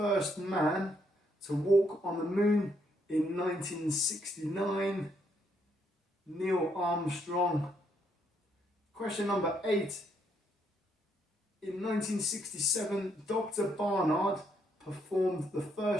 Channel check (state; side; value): normal; both; correlation 0.74